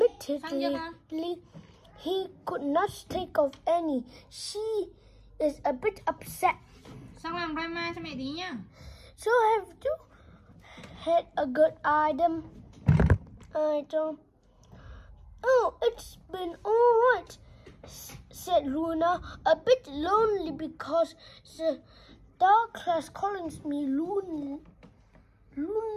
he could not think of any. She is a bit upset. Sao làm drama cho mẹ tí nha. So have you had a good item? Oh, it's been all right, said Luna, a bit lonely because the dark class calls me lonely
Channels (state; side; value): identical; both; correlation 1.00